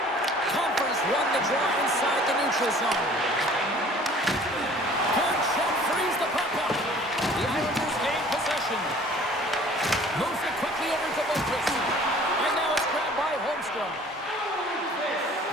Comfer's won the draw inside the neutral neutral zone. Good check, frees the puck up. The Islanders gain possession. Moves it quickly over to Boquist. And now it's grabbed by Holmstrom.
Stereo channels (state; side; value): normal; both; correlation 0.51